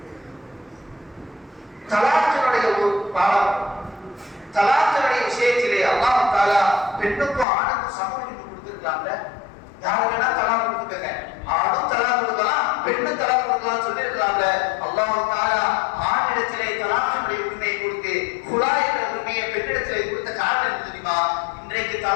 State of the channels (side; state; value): right; drops out; at 7.5 s